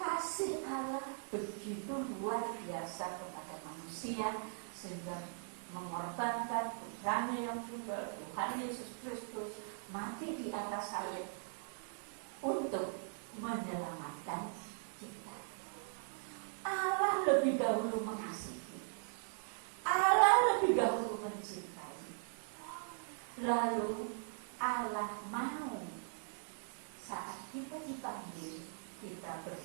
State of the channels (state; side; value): silent; left; digital silence